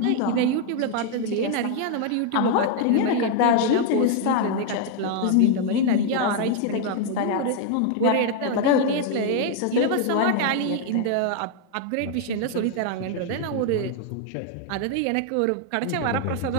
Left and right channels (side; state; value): both; different; correlation 0.00